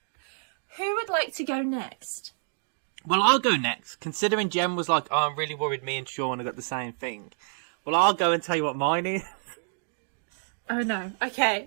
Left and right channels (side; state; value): left; silent; digital silence